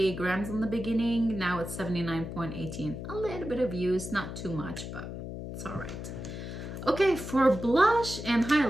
grams in the beginning. Now it's 79.18. A little bit of use, not too much, but it's all right. Okay, for blush and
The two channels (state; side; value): noise; left; hum, 8 dB below the sound